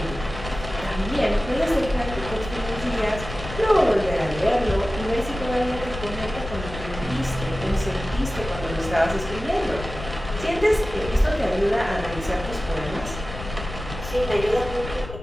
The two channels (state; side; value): noise; left; rumble, 10 dB below the sound